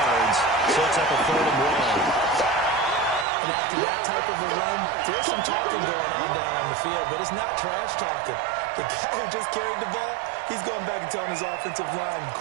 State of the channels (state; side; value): drops out; left; at 3.2 s